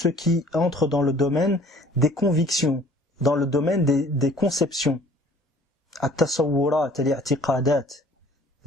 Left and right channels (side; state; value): both; normal; correlation 0.53